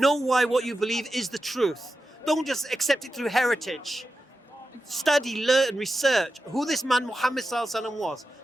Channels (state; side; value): normal; both; correlation 0.91